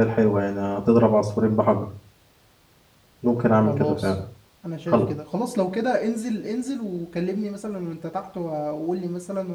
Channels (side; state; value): both; identical; correlation 1.00